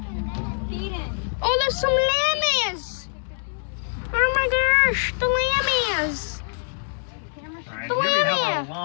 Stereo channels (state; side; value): silent; right; digital silence